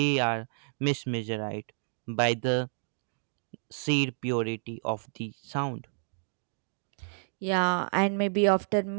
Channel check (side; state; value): left; silent; digital silence